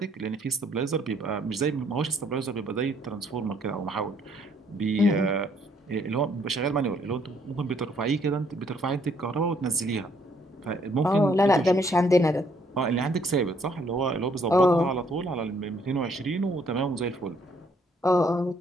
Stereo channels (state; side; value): normal; both; correlation 0.66